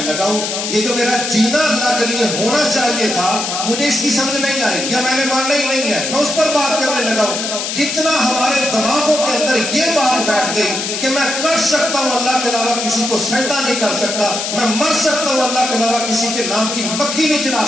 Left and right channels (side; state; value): left; noise; hiss, 3 dB below the sound